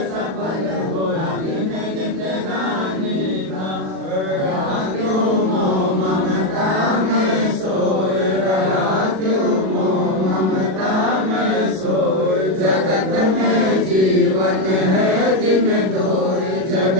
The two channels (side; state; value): left; late; 37 ms